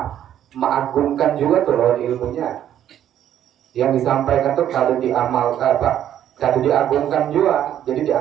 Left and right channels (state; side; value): quieter; left; 10.8 dB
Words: mengagungkan juga tuh lawan ilmunya. Yang disampaikan tuh kada diamalkan kada diagungkan juga, jadi